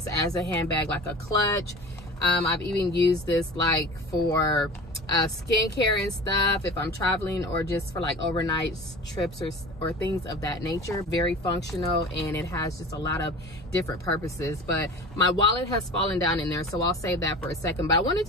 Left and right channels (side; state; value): both; normal; correlation 0.37